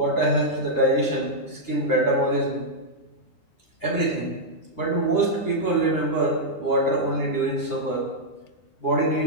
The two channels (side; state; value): right; late; 9.9 ms